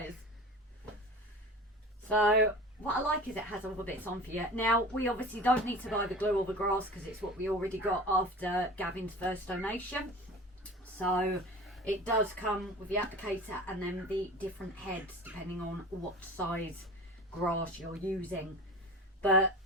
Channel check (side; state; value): both; normal; correlation 0.36